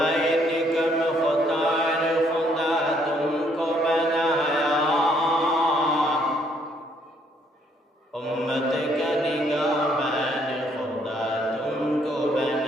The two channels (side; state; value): both; normal; correlation 0.68